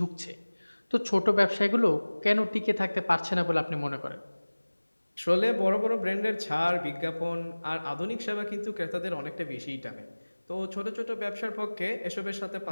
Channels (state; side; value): inverted; both; correlation -1.00